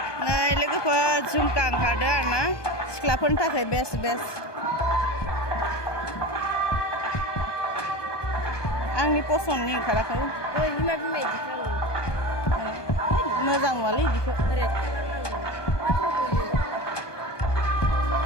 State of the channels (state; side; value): late; right; 1.2 ms